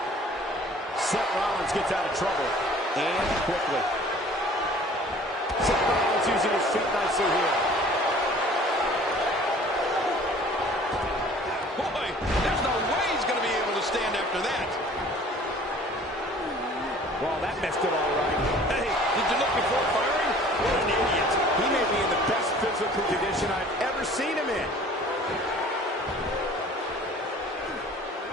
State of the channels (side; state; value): both; normal; correlation 0.50